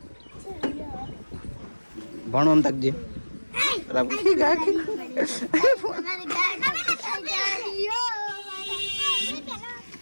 भणो हम तक जे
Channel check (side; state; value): both; inverted; correlation -1.00